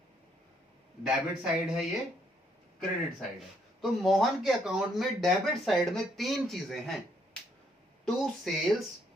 डेबिट साइड है ये, क्रेडिट साइड है। तो मोहन के अकाउंट में डेबिट साइड में 3 चीजें हैं, टू सेल्स,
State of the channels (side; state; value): both; normal; correlation 0.71